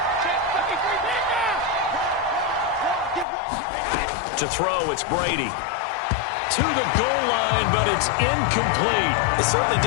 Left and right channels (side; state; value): right; drops out; at 3.2 s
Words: To throw, it's Brady. To the goal line, but it's incomplete. It certainly